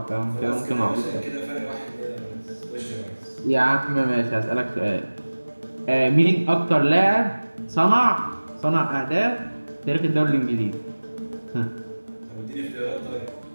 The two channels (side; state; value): both; inverted; correlation -1.00